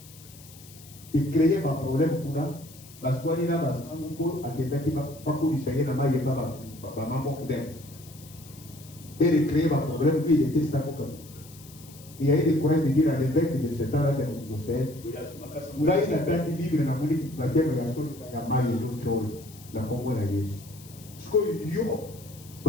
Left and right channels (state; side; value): noise; left; hiss, 20 dB below the sound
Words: Il créait un problème pour nous. Parce que nous avons et de créer un problème, lui il était savant. Il y a eu des courants de dire à l'évêque de ce temps-là de Mousset, il a eu la date libre dans la Monique, la terre de la Somme, la Maille et l'autre, la Congo et la Yesu. Ce que yo,